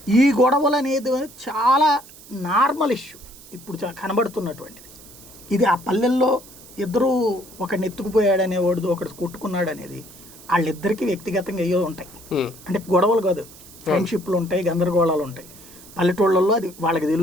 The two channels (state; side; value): noise; right; hiss, 20 dB below the sound